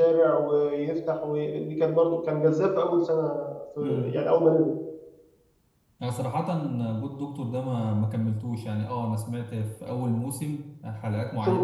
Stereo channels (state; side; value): identical; both; correlation 1.00